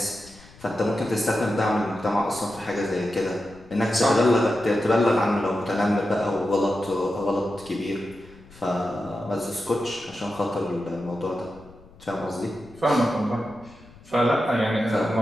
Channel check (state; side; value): noise; left; rumble, 23 dB below the sound